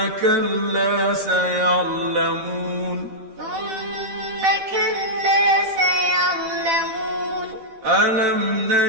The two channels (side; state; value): left; late; 13 ms